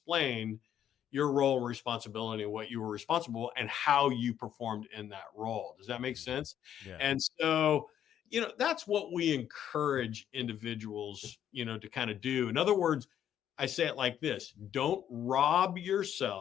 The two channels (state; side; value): quieter; right; 10.1 dB